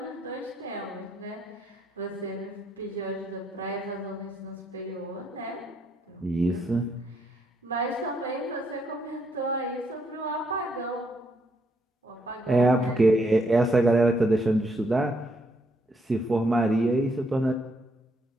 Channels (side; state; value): both; normal; correlation 0.74